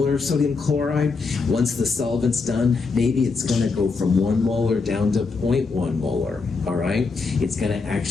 sodium chloride, once the solvent's done, maybe it's going to go from 1 molar down to 0.1 molar, all right? It's going to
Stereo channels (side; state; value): right; quieter; 4.4 dB